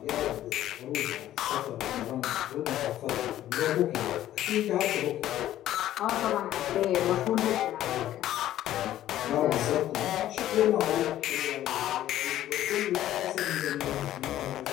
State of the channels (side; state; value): right; quieter; 13.0 dB